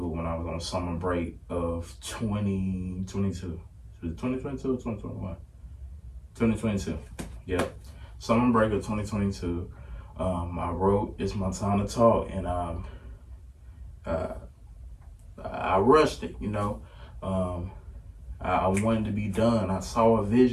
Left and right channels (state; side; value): identical; both; correlation 1.00